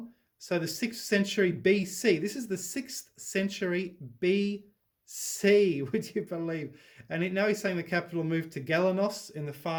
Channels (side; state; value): both; identical; correlation 1.00